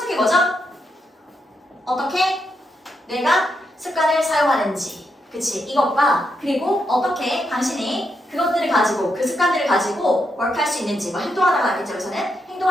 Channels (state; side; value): normal; both; correlation 0.82